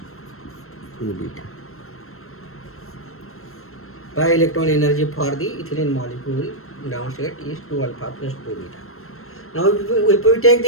2 beta. Pi electron energy for the ethylene molecule ground state is 2 alpha plus 2 beta. Now if we take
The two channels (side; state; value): right; late; 0.62 ms